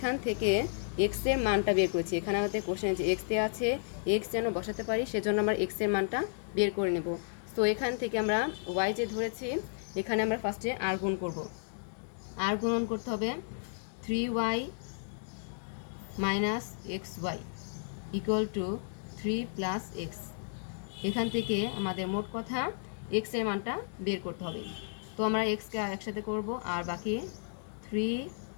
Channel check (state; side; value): silent; right; digital silence